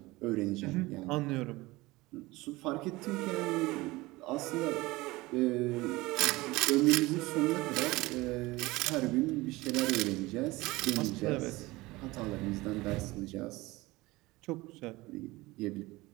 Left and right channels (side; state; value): left; quieter; 20.7 dB